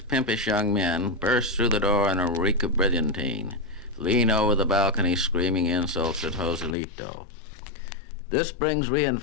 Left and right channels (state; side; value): drops out; right; at 6.8 s